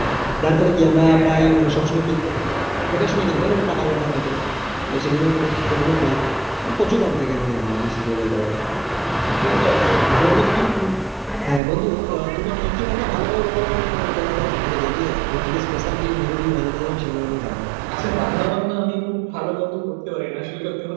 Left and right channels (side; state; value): left; drops out; at 11.6 s